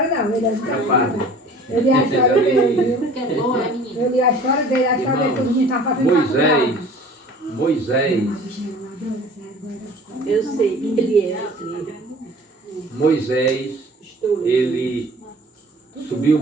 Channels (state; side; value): normal; both; correlation 0.47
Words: não, ele é é padre. Eu li a história dele, viu? Que é bom, é menino. Eu li a história dele, todo mundo tá fazendo Moisés, Eu sei que ele é assim. Moisés, ele subiu o